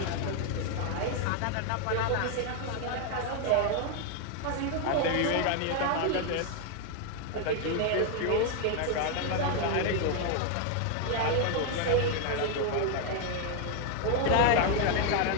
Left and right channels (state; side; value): different; both; correlation 0.01